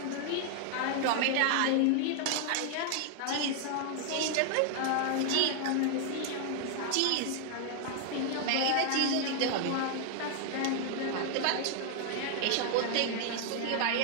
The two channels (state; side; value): different; both; correlation 0.00